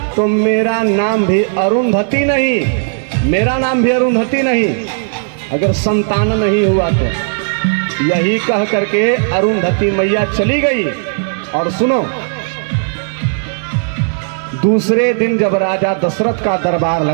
तो मेरा नाम भी अरुंधति नहीं, मेरा नाम भी अरुंधति नहीं, अगर संतान नहीं हुआ तो। यही कह करके अरुंधति मैया चली गई। और सुनो, दूसरे दिन जब राजा दशरथ का दरबार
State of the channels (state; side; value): silent; left; digital silence